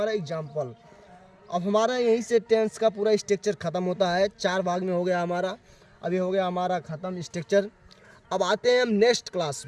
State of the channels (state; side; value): identical; both; correlation 1.00